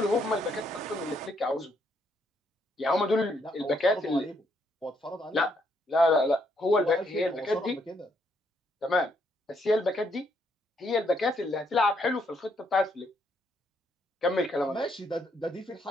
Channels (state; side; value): normal; both; correlation 0.74